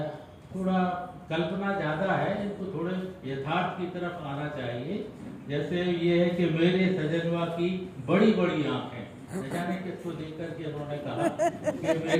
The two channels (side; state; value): both; identical; correlation 1.00